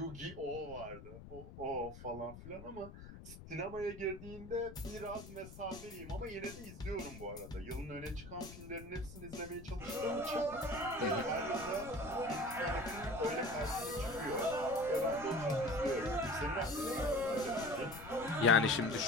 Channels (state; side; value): noise; left; rumble, 14 dB below the sound